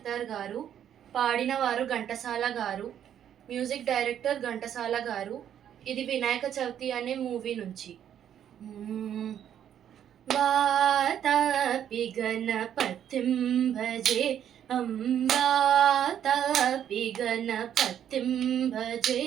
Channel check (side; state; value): left; quieter; 9.8 dB